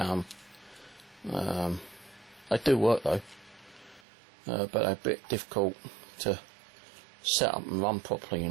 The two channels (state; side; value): drops out; left; at 4.0 s